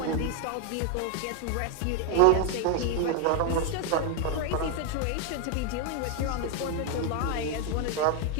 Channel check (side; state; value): both; different; correlation 0.01